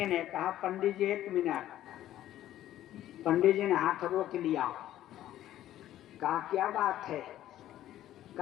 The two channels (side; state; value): right; quieter; 13.0 dB